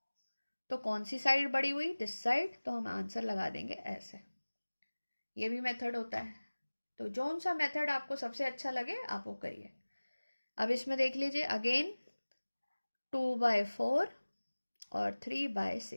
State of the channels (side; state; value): both; inverted; correlation -1.00